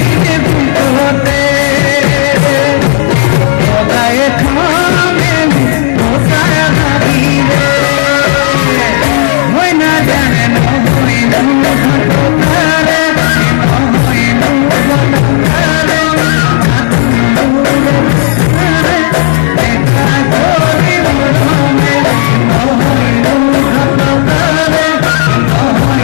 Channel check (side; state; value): right; silent; digital silence